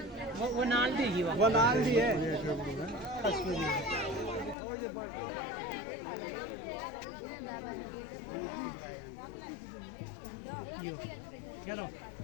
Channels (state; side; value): drops out; right; at 4.5 s